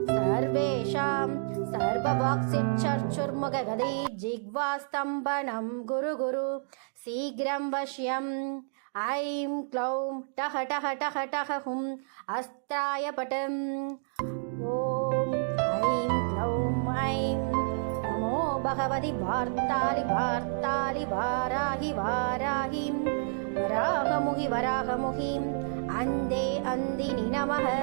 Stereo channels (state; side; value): silent; left; digital silence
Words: सर्वेषां सर्ववाक्सिच्छर्चुर्मुखगदे जिह्वास्तम्भनं गुरु गुरु शीघ्रं वश्यम् ऐं क्लौं टः टः टः टः हुं अस्त्राय पटम् ॐ ऐं क्लौं ऐं नमो भगवति वार्तालि वार्तालि वाराहि वाराहिं वराहमुहि वराहमुहिं अन्धे अन्दिनि नमः